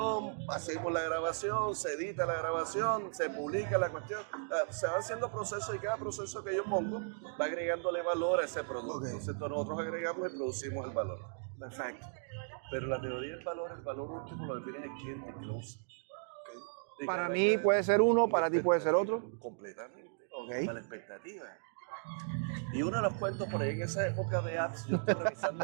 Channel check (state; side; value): silent; left; digital silence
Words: hacemos la grabación, se edita la grabación, se publica la cuestión, se van haciendo procesos y cada proceso que yo pongo va agregándole valor a ese producto. Entonces nosotros agregamos y producimos el valor. Perfecto. Pero la teoría del valor, el valor último lo define el cliente que lo usa. Para mí puede ser uno, para ti puede ser otro. Completamente. Para la expectativa. Y uno de los cuentos por ahí en esa época de apps, yo estoy